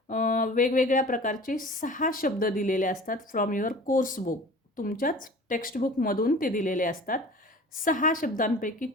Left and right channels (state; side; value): normal; both; correlation 0.42